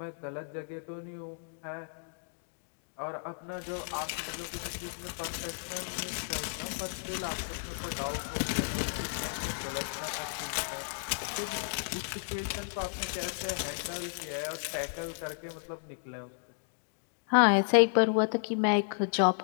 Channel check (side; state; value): right; silent; digital silence